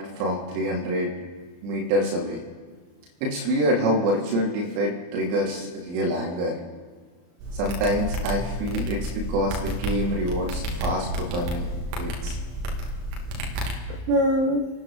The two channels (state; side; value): late; left; 34 ms